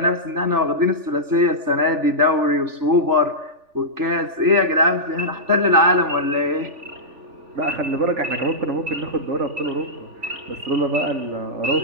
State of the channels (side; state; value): left; late; 3.4 ms